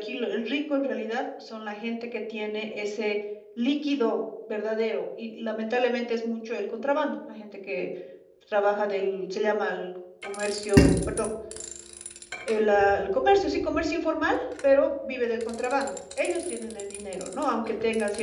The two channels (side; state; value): both; identical; correlation 1.00